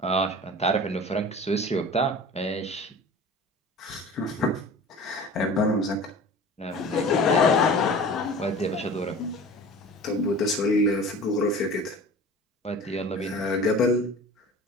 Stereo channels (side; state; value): both; normal; correlation 0.40